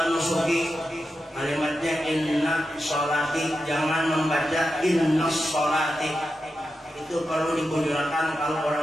nusuki, kalimatnya inna sholati, jangan membaca inna sholati. Itu perlu dikujurkan kalau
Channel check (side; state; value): both; normal; correlation 0.89